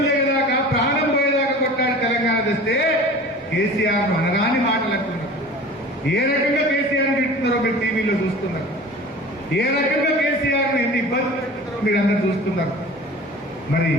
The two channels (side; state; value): both; normal; correlation 0.40